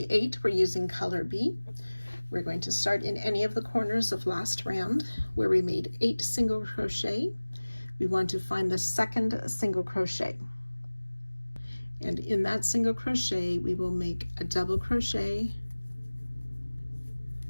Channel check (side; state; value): both; inverted; correlation -1.00